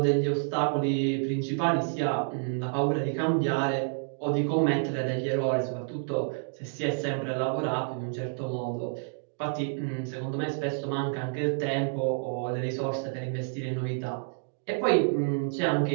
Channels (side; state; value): left; silent; digital silence